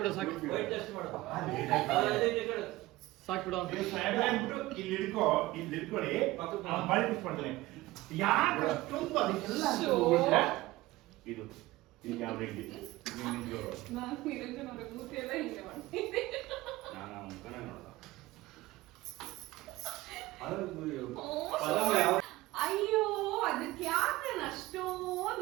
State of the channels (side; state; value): left; quieter; 18.5 dB